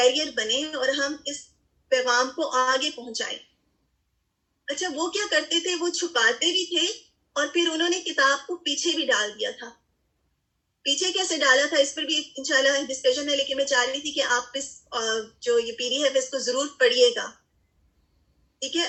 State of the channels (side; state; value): both; identical; correlation 1.00